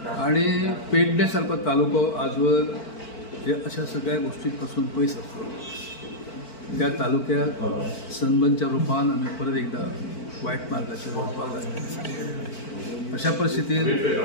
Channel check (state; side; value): late; right; 4.5 ms